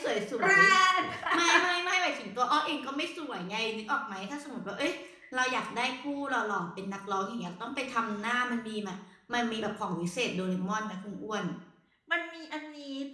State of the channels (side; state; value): both; identical; correlation 1.00